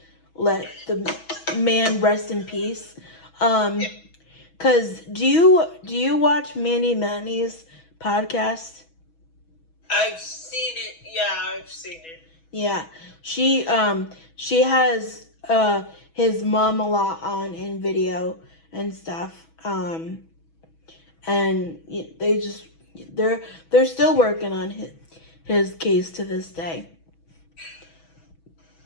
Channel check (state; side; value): late; right; 6.1 ms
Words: let the man rest in peace. Cause do you watch Mandy Manny's podcast? I've seen it. Yeah, I've seen it. Yeah, she has his mom a lot on in video and stuff. And they just they're still working on his case to this day.